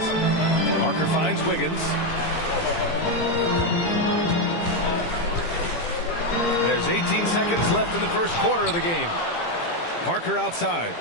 Parker finds Wiggins. There's 18 seconds left in the first quarter of the game. Parker outside.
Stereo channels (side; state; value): right; late; 18 ms